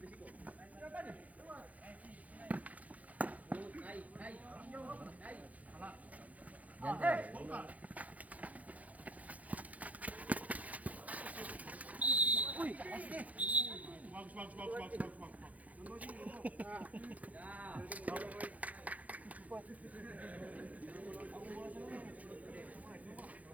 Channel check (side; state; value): left; late; 0.072 ms